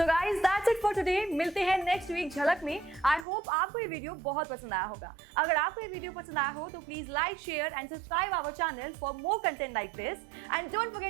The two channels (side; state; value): left; drops out; at 3.2 s